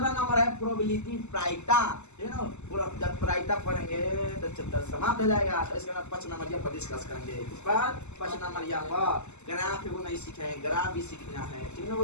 नंबर है प्रोबेबिलिटी प्रायिकता, है ना। पूरा जब प्रायिकता पढ़ेंगे तो चैप्टर समाप्त हो जाएगा। तो इसके बाद 5 नंबर पर डिस्कस करेंगे। इस पर 5 नंबर पर ग्राफ वो नहीं सीखे, ग्राफ भी सीखना है, ठीक है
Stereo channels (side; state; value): right; late; 0.83 ms